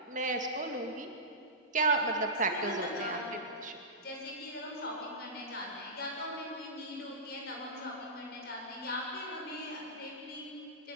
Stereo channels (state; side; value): normal; both; correlation -0.18